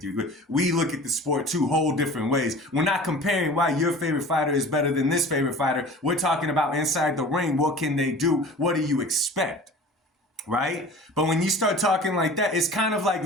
you. We look at the sport two whole different ways. We're not comparing why your favorite fighter is better than this favorite fighter. We're talking about inside the ring. What can they do? What do you expect? Right? But when you start talking like that, it's kind of like,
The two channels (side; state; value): both; normal; correlation 0.41